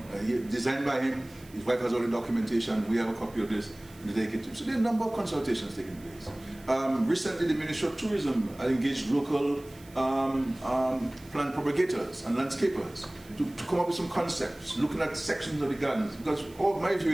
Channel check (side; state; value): right; noise; hiss, 24 dB below the sound